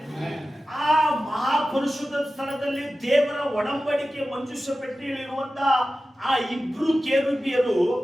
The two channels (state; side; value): normal; both; correlation 0.94